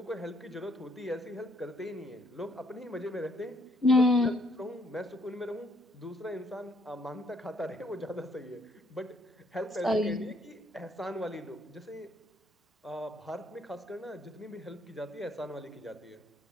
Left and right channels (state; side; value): normal; both; correlation 0.68